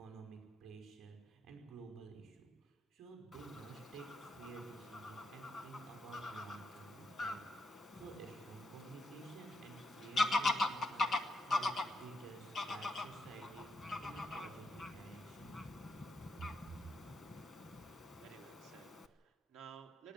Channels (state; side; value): normal; both; correlation 0.82